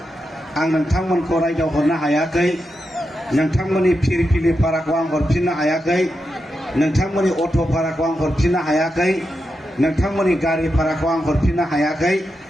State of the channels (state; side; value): normal; both; correlation 0.87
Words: आं नोंथांमोनखौ रायदावहरनो हायाखै। नोंथांमोननि फिरफिलि भाराखौ आं हरफिननो हायाखै, नोंथांमोननि अट' भाराखौ आं हरफिननो हायाखै, नोंथांमोननि गारि भाराखौ आं हरफिननो हायाखै।